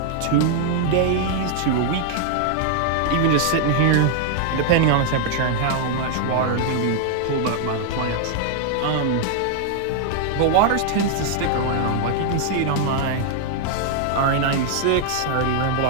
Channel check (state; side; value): different; both; correlation 0.00